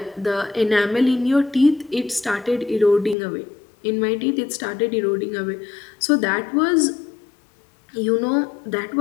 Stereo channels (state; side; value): drops out; right; at 3.2 s